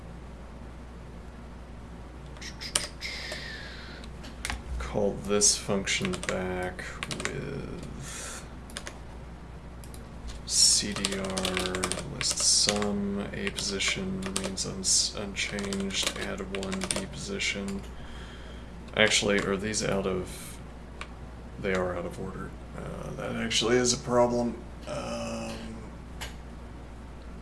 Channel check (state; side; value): identical; both; correlation 1.00